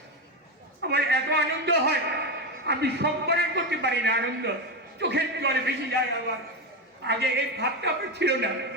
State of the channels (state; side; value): normal; both; correlation 0.14